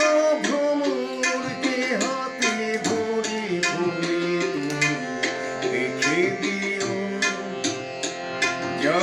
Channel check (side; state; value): both; identical; correlation 1.00